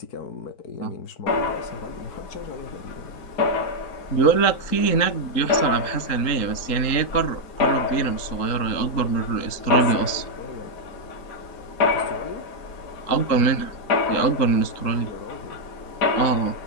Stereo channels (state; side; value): late; right; 3.8 ms